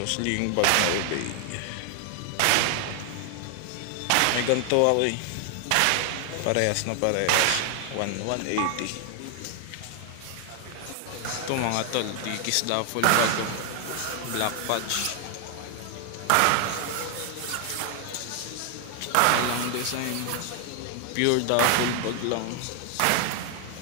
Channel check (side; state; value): both; different; correlation 0.00